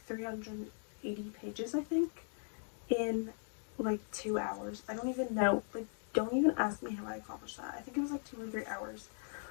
380 pages, I think, in like 2 hours. I don't even know, like, don't even ask me how I accomplished that. I think it was like 2 or 3 hours.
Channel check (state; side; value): silent; right; 52 dB below the other